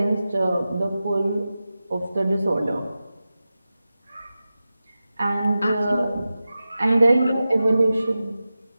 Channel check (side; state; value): both; inverted; correlation -0.94